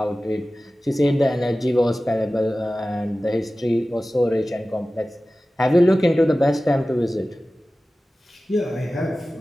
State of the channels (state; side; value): normal; both; correlation 0.96